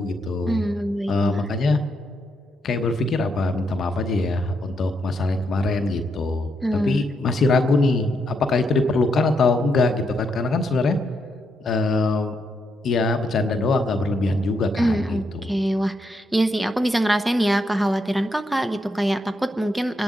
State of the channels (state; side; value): normal; both; correlation 0.79